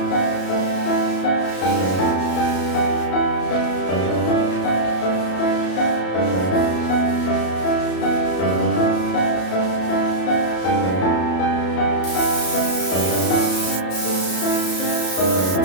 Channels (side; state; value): right; late; 33 ms